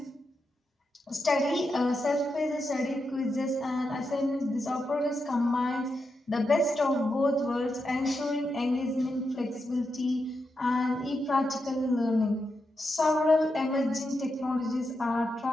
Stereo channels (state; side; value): normal; both; correlation 0.86